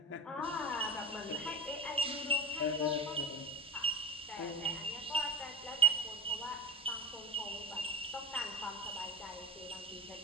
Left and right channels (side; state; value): both; normal; correlation 0.22